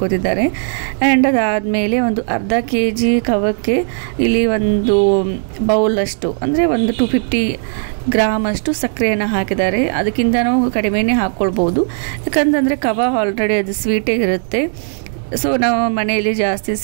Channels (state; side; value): silent; left; 62 dB below the other